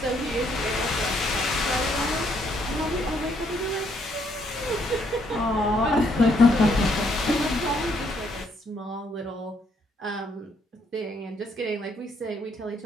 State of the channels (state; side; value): normal; both; correlation 0.70